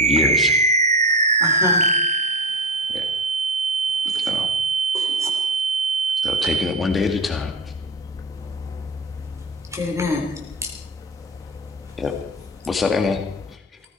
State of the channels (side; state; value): both; normal; correlation 0.19